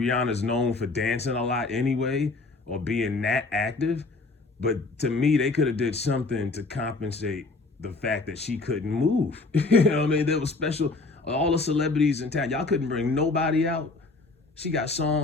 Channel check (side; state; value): right; quieter; 3.6 dB